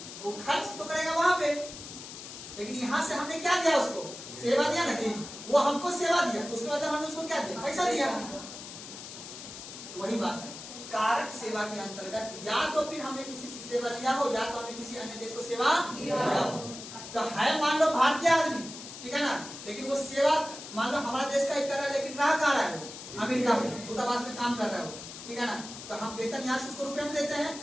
वो खर्च तो करेगा वहां पे। लेकिन यहाँ से हमने क्या दिया उसको? सेवा दिया ना जी, वो हमको सेवा दिया, उसके बाद हमने उसको क्या दिया? पैसा दिया। वही बात है, कारक सेवा के अंतर्गत या तो फिर हमने किसी से सेवा लिया हो या तो हमने किसी अन्य देश को सेवा दिया हो। तो है मान लो भारतीय आदमी, ठीक है ना, लेकिन वो सेवा मान लो हमारा देश का ही कर रहा है, लेकिन रह कहाँ रहा है? वो अमेरिका में दूतावास में काम कर रहा है वो, ठीक है ना। तो हम वेतन यहाँ से उसको रुपए में देते हैं,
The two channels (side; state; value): left; noise; hiss, 12 dB below the sound